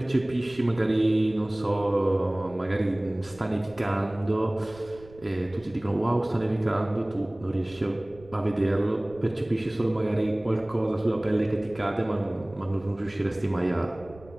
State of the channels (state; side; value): noise; right; rumble, 22 dB below the sound